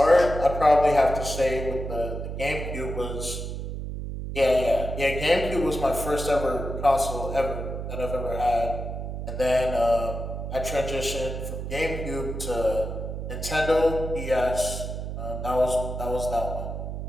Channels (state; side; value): noise; right; hum, 6 dB below the sound